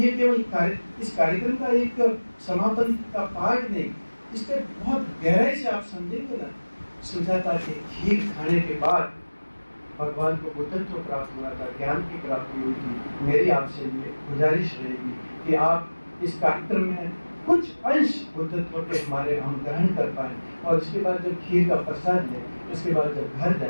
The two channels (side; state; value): both; inverted; correlation -1.00